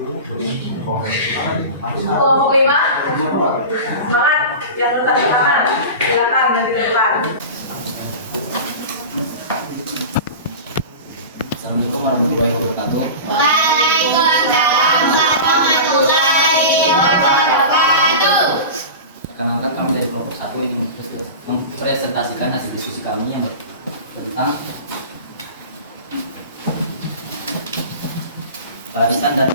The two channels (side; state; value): both; inverted; correlation -0.30